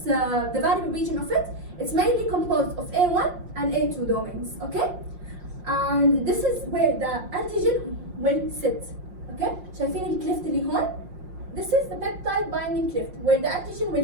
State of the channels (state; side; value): late; left; 5.6 ms